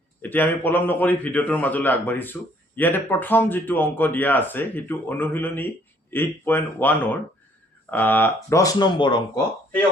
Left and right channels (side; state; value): both; normal; correlation 0.63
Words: এতিয়া আমি পলম নকৰি ভিডিঅ'টোৰ মাজলৈ আগবাঢ়িছো। ইয়াতে প্ৰথম যেটো অংক দিয়া আছে হেতু অনুশীলনী 8.1ৰ 10 নম্বৰ অংক। এই